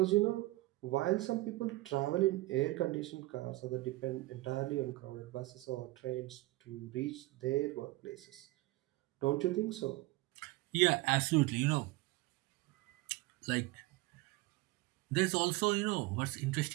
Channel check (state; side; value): quieter; left; 19.9 dB